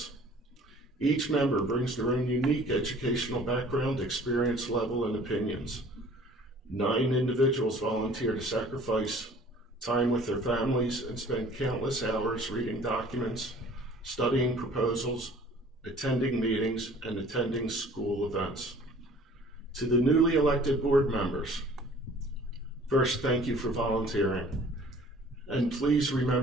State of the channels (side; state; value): both; normal; correlation 0.50